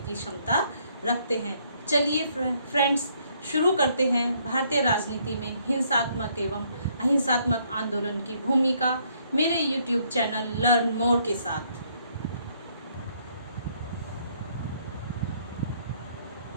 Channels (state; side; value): inverted; both; correlation -0.68